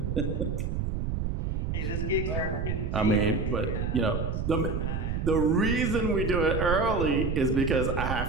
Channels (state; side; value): noise; right; rumble, 2 dB below the sound